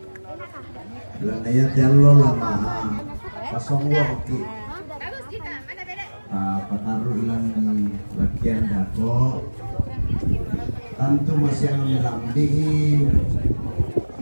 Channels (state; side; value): inverted; both; correlation -1.00